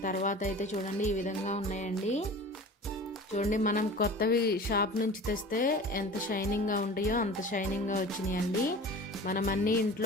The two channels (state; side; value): normal; both; correlation 0.39